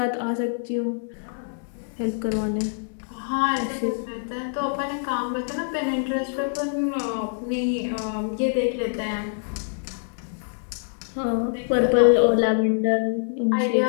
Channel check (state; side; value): silent; right; digital silence